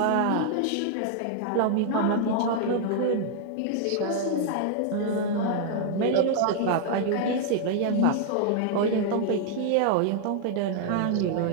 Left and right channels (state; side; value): different; both; correlation 0.00